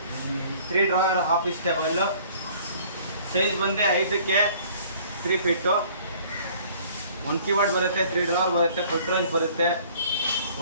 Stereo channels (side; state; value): both; inverted; correlation -0.54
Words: 3 ಡ್ರಾವರ್ ಆಫೀಸ್ ಟೇಬಲ್ಲು. ಸೈಜ್ ಬಂದು 5ಕ್ಕೆ 3 ಫೀಟು. 1 ಕೀಬೋರ್ಡ್ ಬರುತ್ತೆ, 3 ಡ್ರಾವರ್ ಬರುತ್ತೆ, ಫುಟ್ರೇಜ್ ಬರುತ್ತೆ.